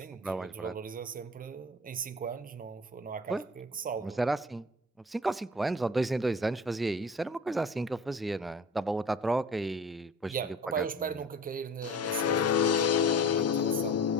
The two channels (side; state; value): both; normal; correlation 0.41